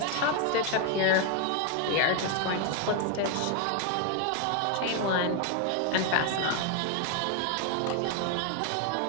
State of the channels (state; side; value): different; both; correlation 0.01